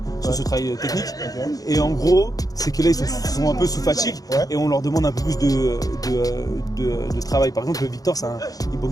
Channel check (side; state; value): right; late; 0.18 ms